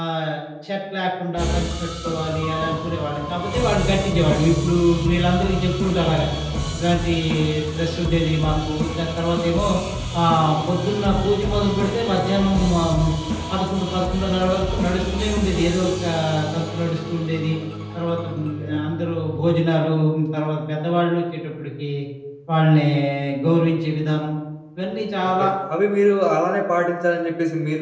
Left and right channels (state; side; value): identical; both; correlation 1.00